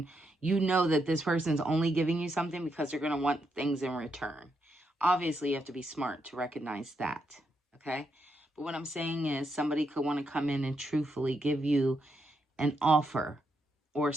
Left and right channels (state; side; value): normal; both; correlation 0.81